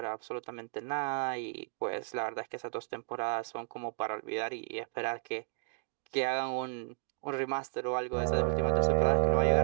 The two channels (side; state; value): left; silent; digital silence